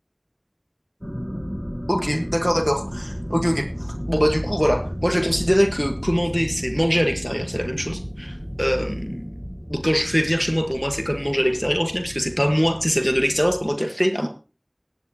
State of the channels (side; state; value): both; identical; correlation 1.00